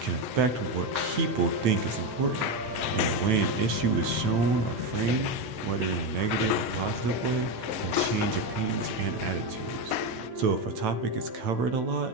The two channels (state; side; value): late; left; 9.1 ms